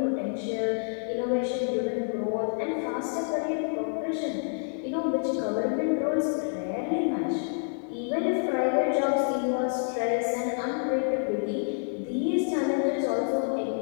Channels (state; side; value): silent; right; 59 dB below the other